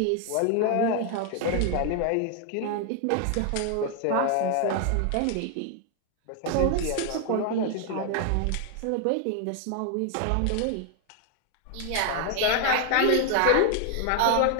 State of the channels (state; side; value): different; both; correlation 0.00